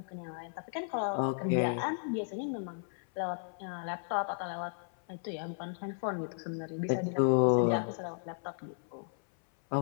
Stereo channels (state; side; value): silent; right; 55 dB below the other